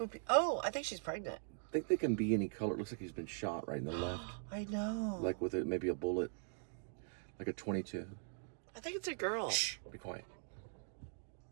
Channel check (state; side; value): silent; left; digital silence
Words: Oh, I think she's pregnant. I think they can be any color. It looks like he's been shot right in the left. I know. Like with maybe a bullet. Like a 22. I think it's a girl. Shh. Be quiet.